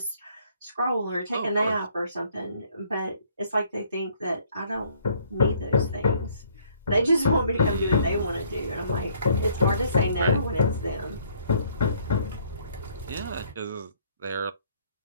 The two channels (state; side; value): inverted; both; correlation -0.62